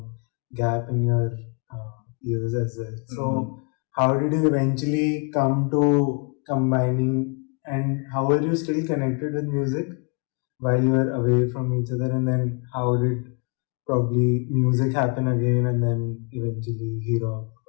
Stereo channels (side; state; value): right; quieter; 34.5 dB